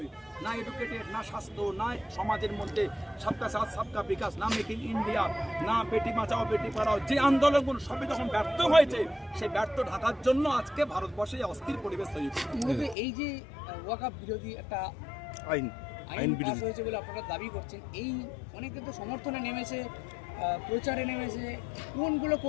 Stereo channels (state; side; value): drops out; right; at 13.0 s